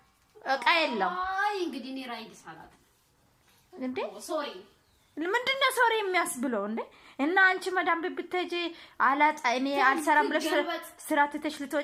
እቃ የለም አይ እንግዲህ እኔ ራይድ ሰላት እንዴ ሶሪ ምንድነው ሶሪ የሚያስብለው እንዴ እና አንቺ መዳም ብትሄጂ አላጣ እኔ አልሰራም ብለሽ ስራ ትተሽ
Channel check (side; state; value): both; identical; correlation 1.00